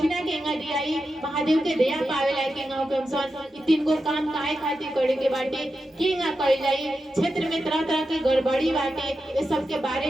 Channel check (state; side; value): normal; both; correlation 0.89